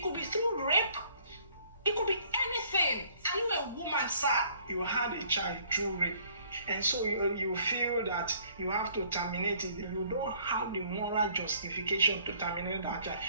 could be through rape. It could be anything. Are you a woman, sir? You had a child through rape, and so you feel that you have to terminate it. You don't have the moral justification to terminate that child.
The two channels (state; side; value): inverted; both; correlation -0.59